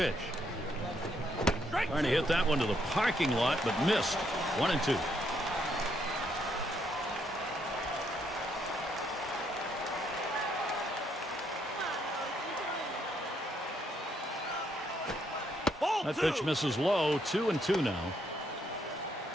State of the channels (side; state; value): both; normal; correlation 0.73